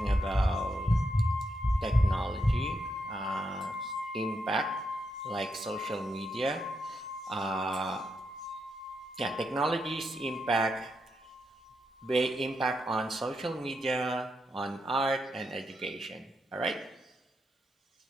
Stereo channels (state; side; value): normal; both; correlation 0.82